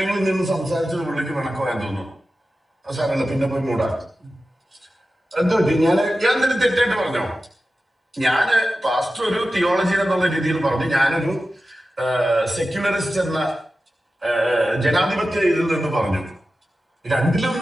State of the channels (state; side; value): normal; both; correlation 0.93